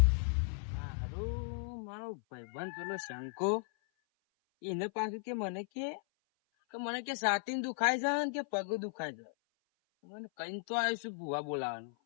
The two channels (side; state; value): right; silent; 54 dB below the other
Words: હારું, મારો ભાઈબંધ પેલો શંકો એને પાછું કે મને કે છાતી દુખાય છે ને કે પગ દુખાય છે. મને કઈ તો આવીશું ભૂવા બોલાવાનું.